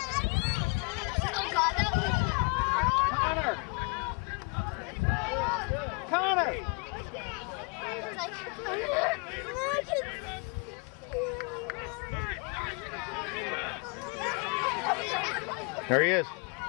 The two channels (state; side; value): quieter; right; 34.1 dB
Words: Oh God, that was... Connor. There he is.